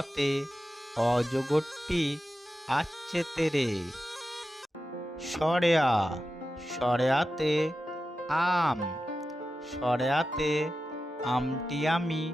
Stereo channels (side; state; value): both; normal; correlation 0.92